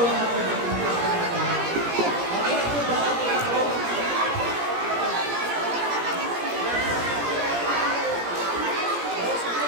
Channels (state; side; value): late; left; 17 ms